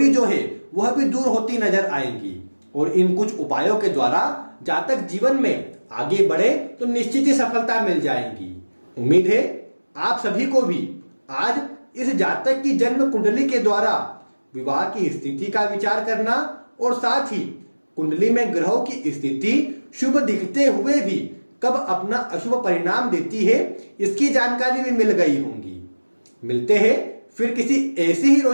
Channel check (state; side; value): inverted; both; correlation -1.00